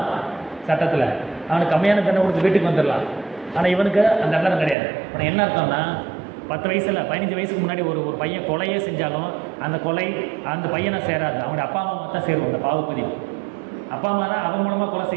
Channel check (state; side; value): drops out; left; at 4.8 s